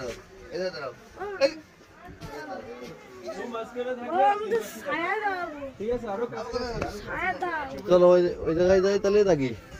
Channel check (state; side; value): identical; both; correlation 1.00